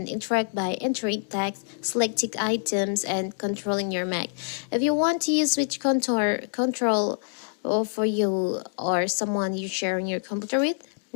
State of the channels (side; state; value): right; silent; 61 dB below the other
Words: interact by entering text, selecting items, and controlling your Mac. If you want to use switch control for you or someone you're sharing your computer with,